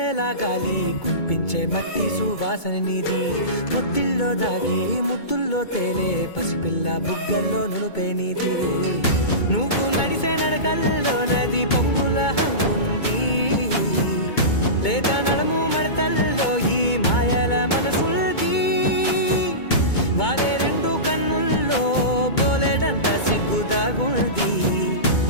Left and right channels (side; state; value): right; late; 2.2 ms